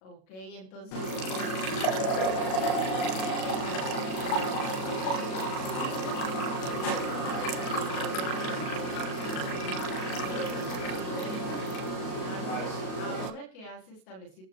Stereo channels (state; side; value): late; right; 37 ms